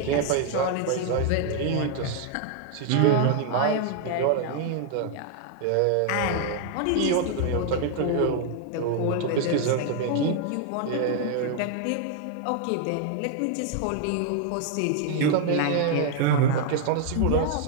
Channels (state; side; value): different; both; correlation 0.00